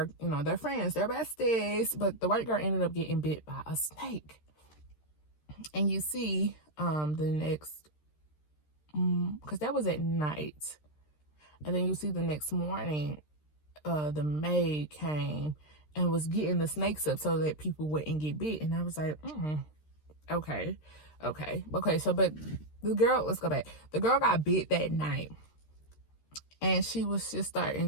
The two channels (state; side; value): late; right; 13 ms